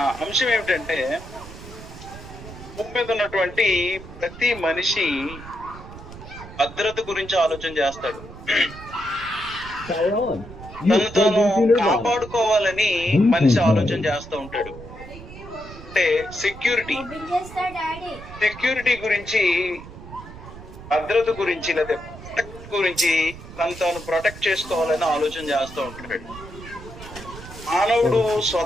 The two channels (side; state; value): right; noise; rumble, 15 dB below the sound